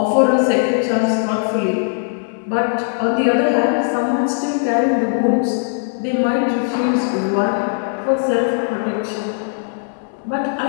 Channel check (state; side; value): silent; right; 67 dB below the other